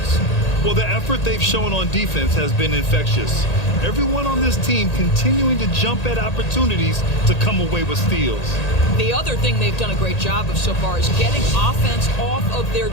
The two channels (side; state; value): right; late; 1.8 ms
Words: Well, the effort they've shown on defense has been infectious. Everyone on this team continuing to jump at opportunities to come away with steals. The other thing they've done a great job of so far is getting offense off of their